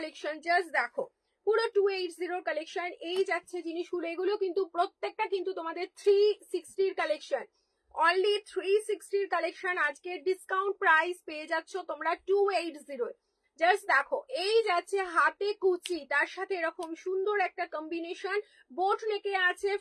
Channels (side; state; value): both; identical; correlation 1.00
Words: জাস্ট দেখো পুরো 280 কালেকশন, এই যাচ্ছে জিনিসগুলো, এগুলো কিন্তু প্রত্যেকটা কিন্তু তোমাদের 360 কালেকশন, অনলি 360 কালেকশন। আজকে ডিসকাউন্ট প্রাইস পেয়ে যাচ্ছ তোমরা 280। জাস্ট দেখো এই যাচ্ছে হাতে কুচি, তার সাথে এরকম সুন্দর একটা কম্বিনেশন, বোট নেকে আছে,